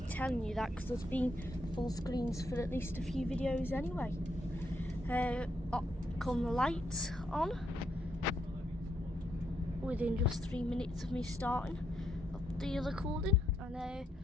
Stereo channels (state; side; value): normal; both; correlation 0.77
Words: telling you that, because there's been full screens for at least a few videos anyway. Come the lights on within just 3 minutes of me starting up the recording, and